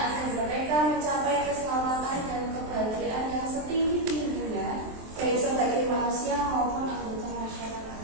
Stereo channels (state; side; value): late; left; 23 ms